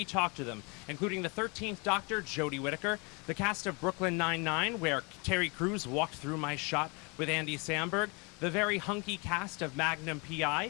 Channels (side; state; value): right; quieter; 30.4 dB